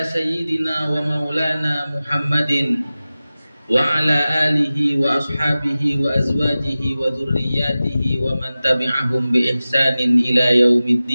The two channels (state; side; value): inverted; both; correlation -0.96